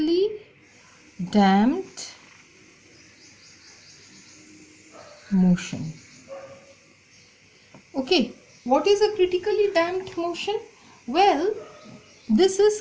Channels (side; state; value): both; identical; correlation 1.00